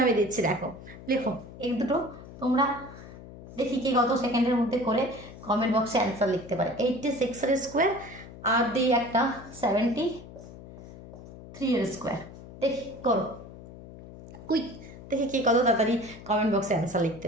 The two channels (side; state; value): left; noise; hum, 16 dB below the sound